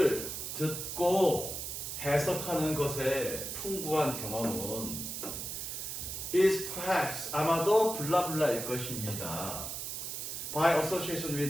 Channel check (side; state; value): right; noise; hiss, 5 dB below the sound